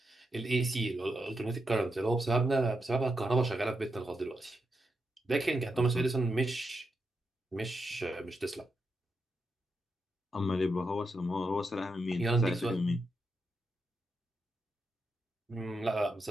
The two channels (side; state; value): both; normal; correlation 0.85